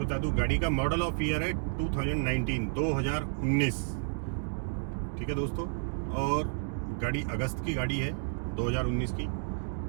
दूं, गाड़ी का मॉडल ऑफ ईयर है 2019। ठीक है दोस्तों, और गाड़ी अगस्त की गाड़ी है 2019 की।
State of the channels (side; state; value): left; silent; digital silence